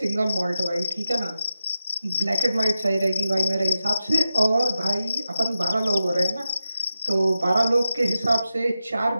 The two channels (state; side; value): inverted; both; correlation -0.92